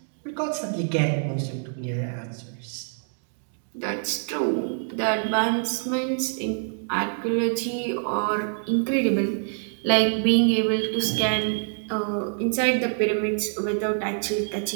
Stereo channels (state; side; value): silent; left; digital silence